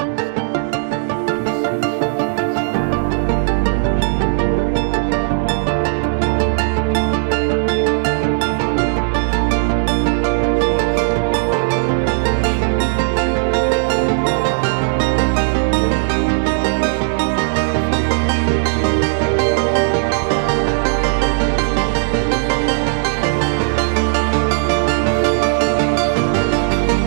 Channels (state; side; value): silent; left; 65 dB below the other